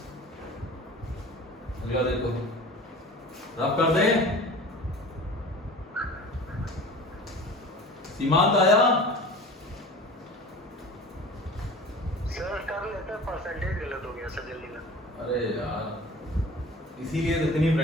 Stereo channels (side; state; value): both; normal; correlation 0.40